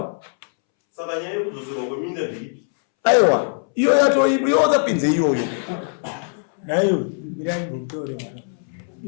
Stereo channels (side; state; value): right; silent; 65 dB below the other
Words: saka nyaya yekudzoserwa kweminda ndeipi aiwa iyo yatoipo iwozapinze iyoyo nayo mirangotore